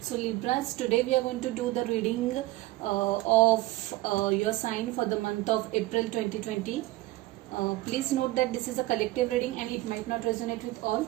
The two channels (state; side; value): quieter; left; 18.1 dB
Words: Libras, today we are going to do the reading of your sign for the month of April 2020. Please note that this is a collective reading and it might not resonate with all.